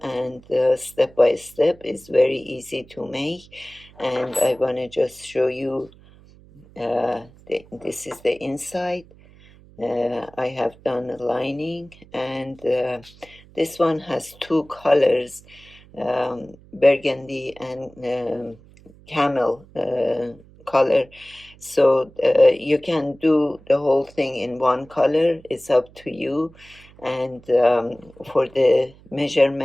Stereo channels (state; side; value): noise; right; hum, 24 dB below the sound